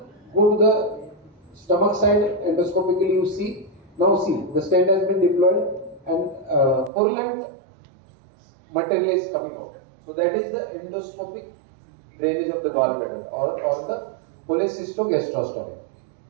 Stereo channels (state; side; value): drops out; left; at 6.9 s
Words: go to the stomach side. Endoscopically you see. Now see, the stent has been deployed, and purulent material is coming out. So that is the endoscopic drainage of the gallbladder, or the cholecystogastrostomy.